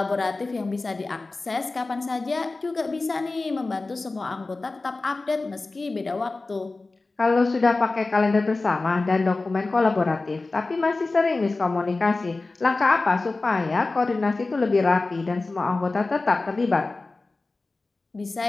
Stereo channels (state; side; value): quieter; right; 3.4 dB